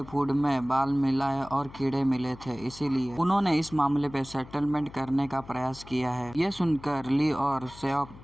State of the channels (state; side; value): noise; left; hum, 18 dB below the sound